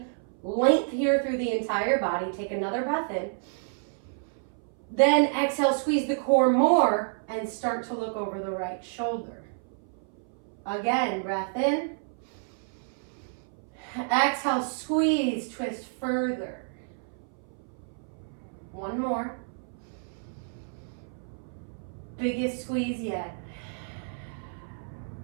length here through the entire body. Take another breath in. Then exhale, squeeze the core more and start to look over the right shoulder. Again, breath in. Exhale, squeeze, twist further. One more. Biggest squeeze yet.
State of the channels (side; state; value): left; silent; 58 dB below the other